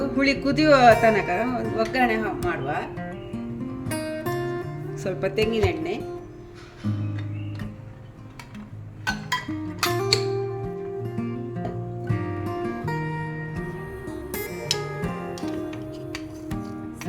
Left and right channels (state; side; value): identical; both; correlation 1.00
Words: ಹುಳಿ ಕುದಿಯುವ ತನಕ ಒಂದು ಒಗ್ಗರಣೆ ಮಾಡುವ. ಸ್ವಲ್ಪ ತೆಂಗಿನ ಎಣ್ಣೆ,